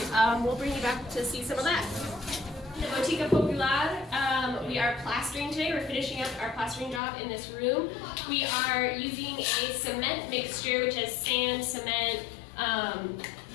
we'll bring you back to see some of that. The Botica Popular, we are plastering today. We're finishing up our plastering job in this room. We are using a cement mixture, which has sand, cement,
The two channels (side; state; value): right; drops out; at 7.0 s